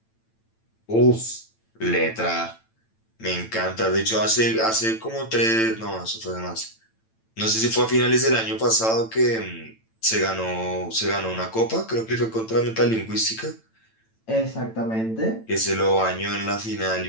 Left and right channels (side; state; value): right; late; 9.0 ms